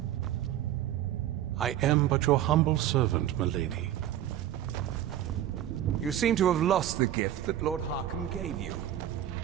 I am but your humble servant, milady. You seem to have lost the gift that Lord Harkon gave you.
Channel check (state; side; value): quieter; left; 11.8 dB